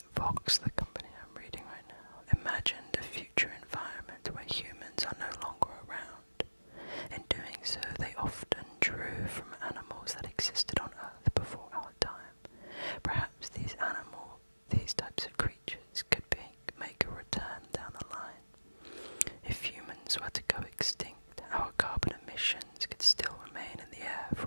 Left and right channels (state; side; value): inverted; both; correlation -1.00